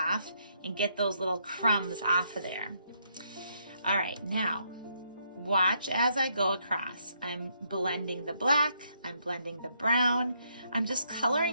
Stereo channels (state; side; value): inverted; both; correlation -0.74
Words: and get those little crumbs off of there. All right, now watch as I go across. I'm blending the black, I'm blending the brown. I'm just